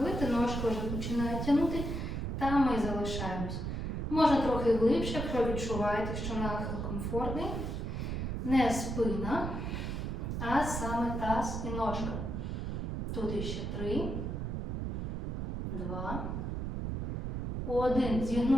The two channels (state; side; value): noise; right; rumble, 3 dB below the sound